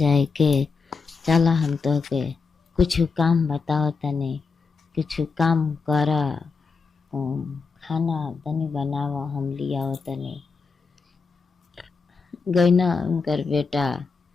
के, चला हम तोहके कुछ काम बताओ तनी, कुछ काम कर, खाना तनी बनावा हम लियाओ तनी। गइना उनकर बेटा,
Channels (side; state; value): right; quieter; 4.8 dB